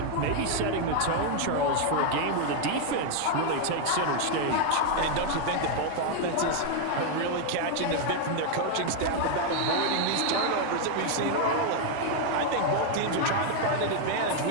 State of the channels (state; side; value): different; both; correlation 0.00